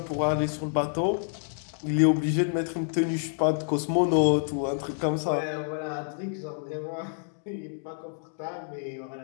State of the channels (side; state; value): right; silent; digital silence